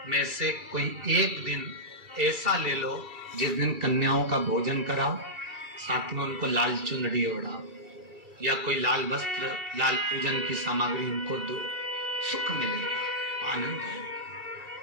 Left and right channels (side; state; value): left; late; 2.3 ms